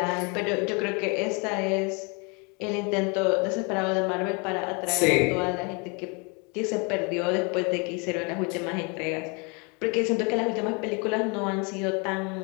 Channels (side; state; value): right; quieter; 32.2 dB